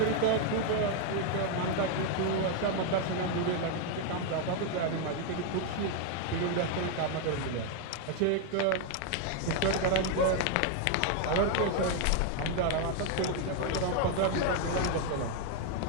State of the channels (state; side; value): different; both; correlation 0.01